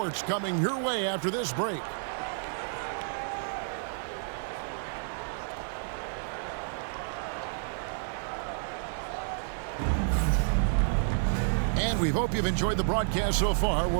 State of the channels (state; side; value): silent; left; 58 dB below the other